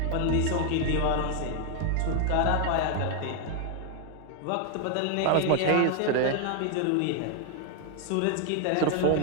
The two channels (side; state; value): both; different; correlation 0.00